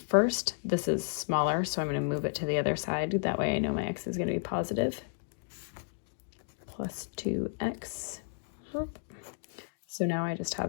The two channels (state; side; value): silent; right; digital silence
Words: first. This is smaller, so I'm going to move it to the other side. That way I know my x is going to be positive. Plus 2x. So now I just